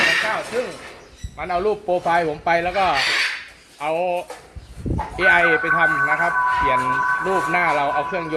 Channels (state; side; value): identical; both; correlation 1.00